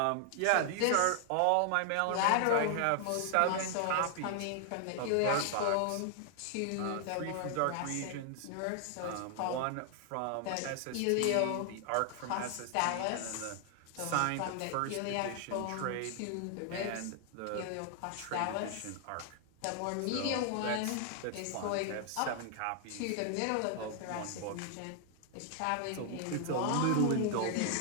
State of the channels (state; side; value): different; both; correlation 0.00